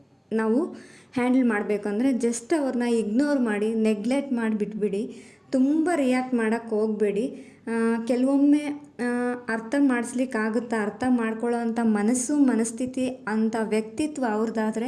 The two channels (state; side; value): identical; both; correlation 1.00